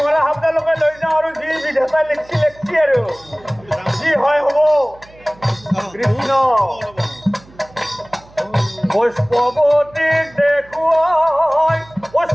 শব্দলৈকে লৈ যাওঁ আৰু যি বিধাতা লিখছি লিখছি আৰু যি হয় হ'ব কৃষ্ণ পুষ্পৱতীক দেখুৱাই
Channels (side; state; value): right; noise; hum, 25 dB below the sound